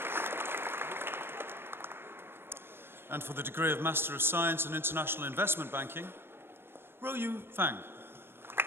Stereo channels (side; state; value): left; late; 0.11 ms